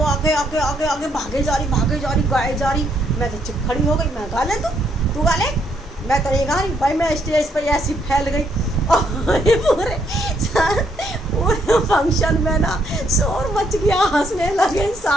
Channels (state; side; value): normal; both; correlation 0.72